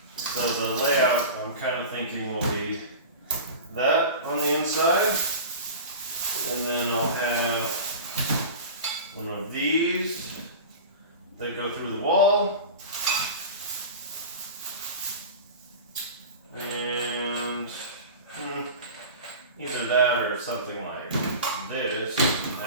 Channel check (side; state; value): both; inverted; correlation -0.33